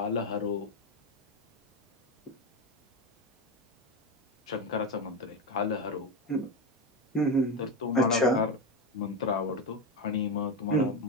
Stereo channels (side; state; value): both; normal; correlation 0.14